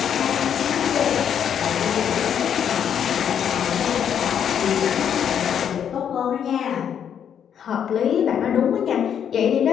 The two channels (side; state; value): right; quieter; 8.6 dB